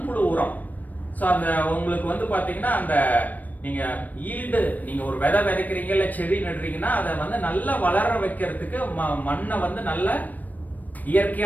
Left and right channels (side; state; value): right; late; 0.082 ms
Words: உரம். ஸோ அந்த உங்களுக்கு வந்து பாத்தீங்கன்னா அந்த நீங்க ஈல்டு, நீங்க ஒரு விதை விதைக்கிறீங்க இல்ல செடி நடுறீங்கன்னா அதை வந்து நல்லா வளர வைக்கிறதுக்கு மண்ணை வந்து நல்ல